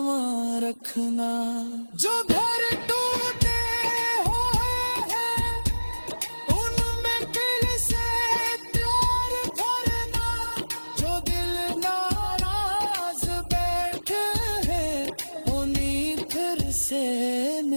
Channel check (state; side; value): inverted; both; correlation -1.00